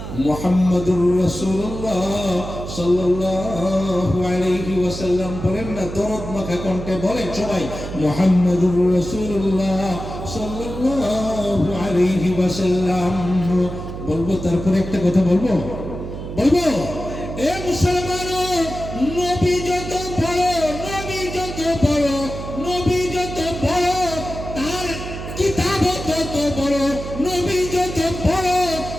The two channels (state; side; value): noise; right; hum, 8 dB below the sound